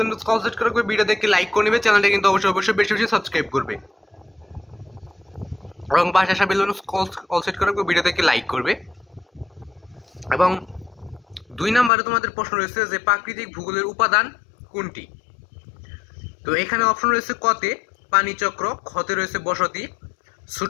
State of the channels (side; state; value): right; drops out; at 11.9 s